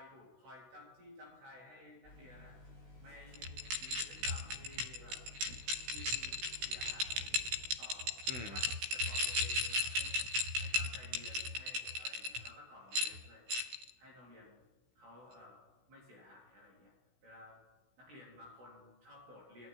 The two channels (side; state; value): left; late; 16 ms